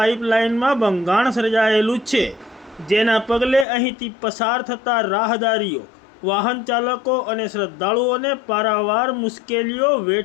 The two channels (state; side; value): drops out; right; at 3.7 s